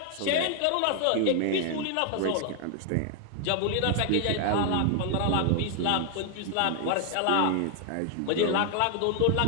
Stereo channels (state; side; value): different; both; correlation 0.00